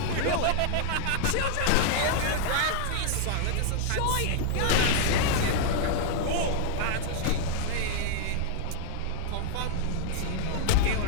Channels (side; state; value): both; different; correlation -0.01